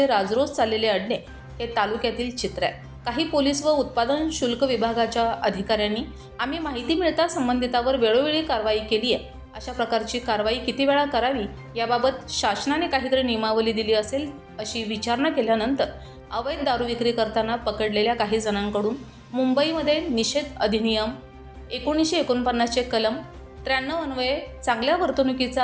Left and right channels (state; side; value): identical; both; correlation 1.00